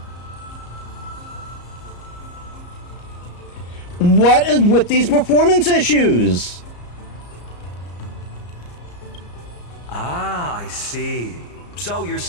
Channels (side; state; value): right; late; 34 ms